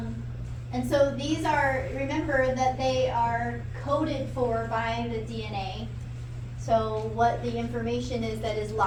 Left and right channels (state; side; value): identical; both; correlation 1.00